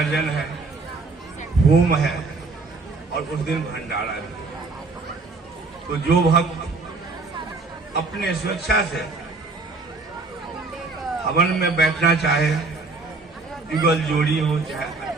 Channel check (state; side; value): quieter; left; 3.8 dB